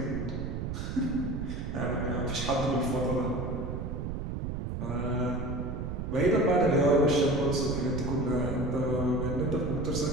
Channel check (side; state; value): right; noise; rumble, 4 dB below the sound